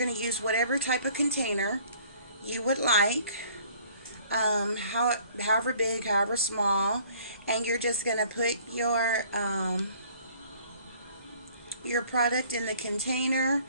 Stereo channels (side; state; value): both; inverted; correlation -0.55